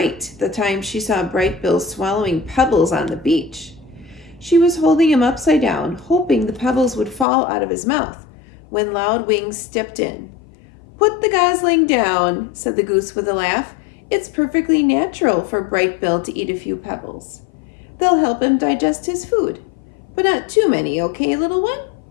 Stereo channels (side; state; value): right; drops out; at 7.2 s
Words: the time she saw Bright Bill swallowing pebbles on the beach. She was holding him upside down, hoping the pebbles would fall out of his mouth, when Loud Wings stepped in. "Put the gosling down," said the goose with a laugh. "It's perfectly natural for Bright Bill to eat a few pebbles. They'll help him digest his food. But not too many, okay, little one?"